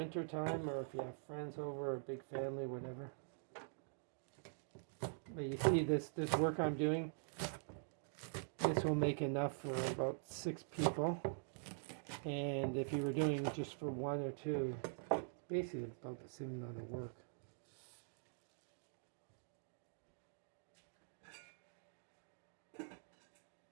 time, or if you have friends over, or a big family, whatever. But you see this work I'm doing, this will make enough for about 6 people. And if you were doing just for 1 or 2, basically about the same amount of work.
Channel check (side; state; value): left; silent; digital silence